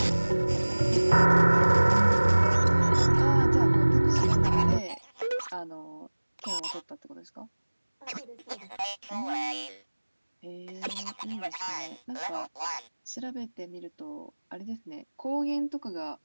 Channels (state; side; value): inverted; both; correlation -1.00